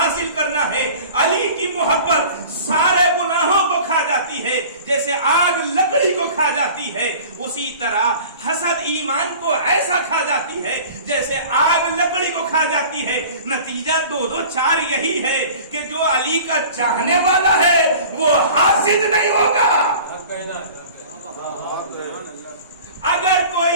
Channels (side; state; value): both; inverted; correlation -0.43